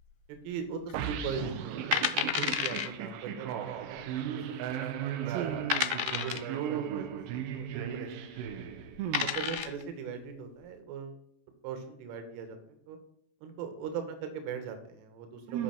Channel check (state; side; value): late; left; 14 ms